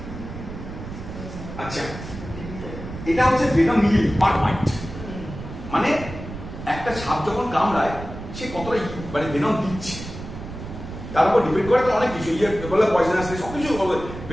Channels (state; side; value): noise; right; rumble, 10 dB below the sound